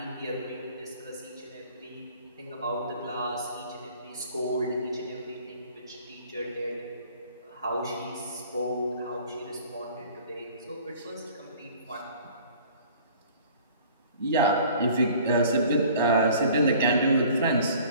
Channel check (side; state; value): both; inverted; correlation -0.50